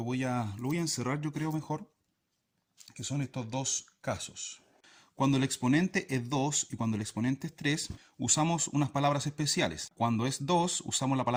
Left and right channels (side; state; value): both; identical; correlation 1.00